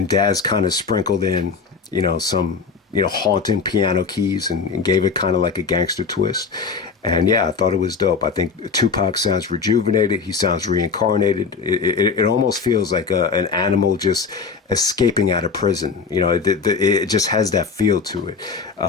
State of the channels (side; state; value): right; quieter; 5.1 dB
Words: Daz kind of sprinkled in some haunting piano keys and gave it kind of like a gangster twist. And yeah, I thought it was dope. I think Tupac sounds rejuvenated. He sounds reincarnated. It almost feels like an animal just escaping out of prison. It just has that feel to it.